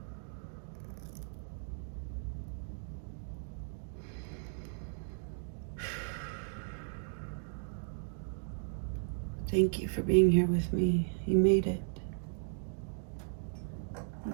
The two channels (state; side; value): silent; left; digital silence